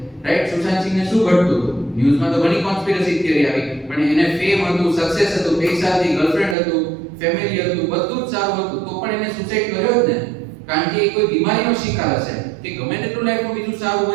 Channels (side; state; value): left; drops out; at 6.6 s